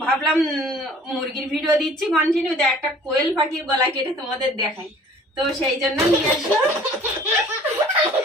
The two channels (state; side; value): normal; both; correlation 0.51